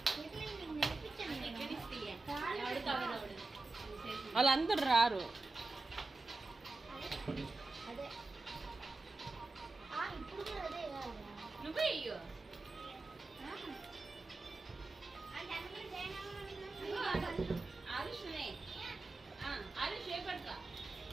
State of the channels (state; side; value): quieter; left; 3.3 dB